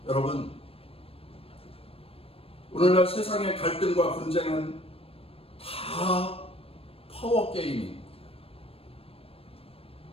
여러분, 오늘날 세상의 갈등과 분쟁은 다 파워게임입니다.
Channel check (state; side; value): late; right; 0.28 ms